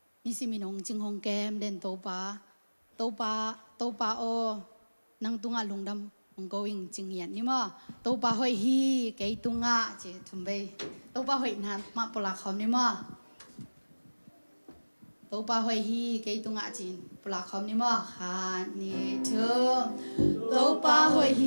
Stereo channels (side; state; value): both; inverted; correlation -1.00